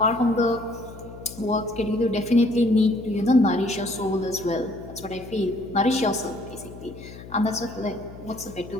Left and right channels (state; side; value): noise; left; hum, 15 dB below the sound